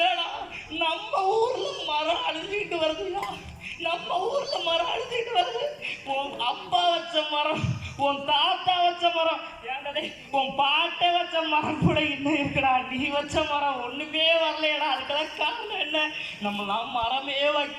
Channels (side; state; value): both; identical; correlation 1.00